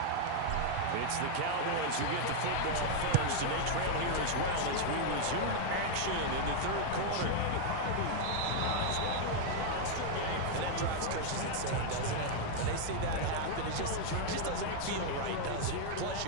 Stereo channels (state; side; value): different; both; correlation 0.00